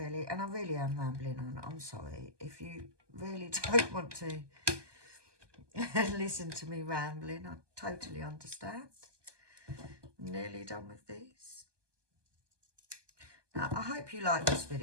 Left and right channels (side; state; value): left; late; 1.2 ms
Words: And I really am rambling on. I'm sorry. If you really don't want to listen to me rambling, I totally understand. I'm nearly done with these. Now, I hope you like this